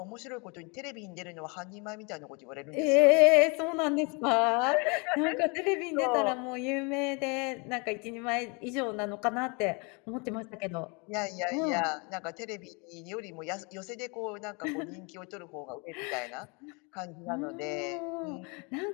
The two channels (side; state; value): right; quieter; 31.5 dB